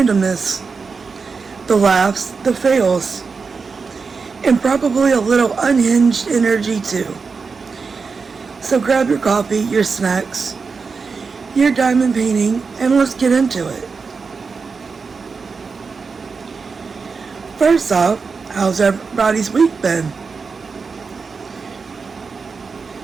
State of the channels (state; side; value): quieter; left; 4.9 dB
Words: the laughs, the fails, and probably a little unhinged energy too. So grab your coffee, your snacks, your diamond painting, and let's get into it. First off, how's everybody's week been?